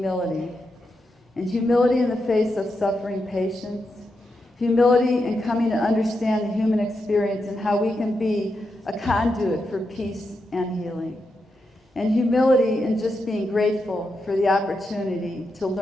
And humility in the face of suffering patients. Humility in coming to understand the human experience and how we can be a conduit for peace and healing. And humility in just being grateful for the opportunity to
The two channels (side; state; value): both; normal; correlation 0.85